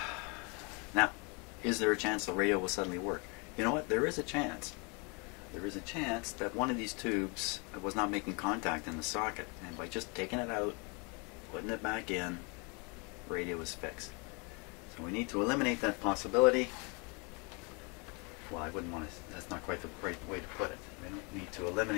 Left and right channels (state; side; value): quieter; right; 31.7 dB